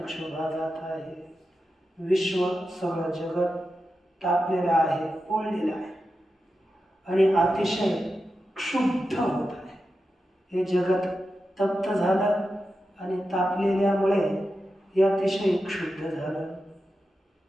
जात आहे. विश्व सगळं जगत तापलेलं आहे, पोळलेलं आहे आणि अतिशय क्षुब्ध होत आहे. हे जगत तप्त झालं आणि तापलेल्यामुळे हे अतिशय क्षुब्ध झालं.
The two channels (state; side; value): normal; both; correlation 0.90